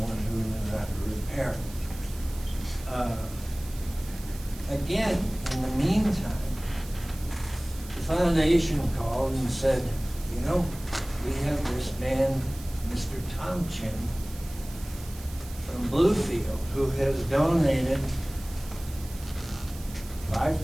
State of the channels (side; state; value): right; noise; hiss, 18 dB below the sound